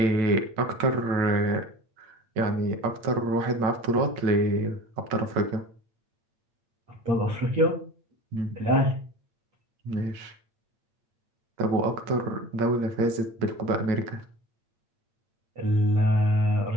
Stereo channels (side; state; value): left; late; 8.8 ms